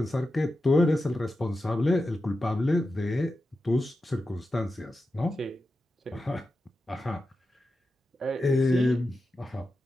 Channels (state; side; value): normal; both; correlation 0.91